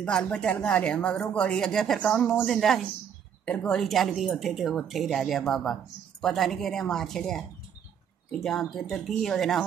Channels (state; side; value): quieter; left; 8.3 dB